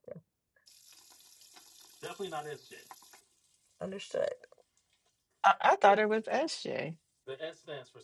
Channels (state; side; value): identical; both; correlation 1.00